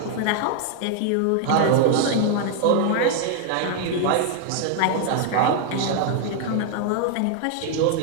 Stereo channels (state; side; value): different; both; correlation 0.00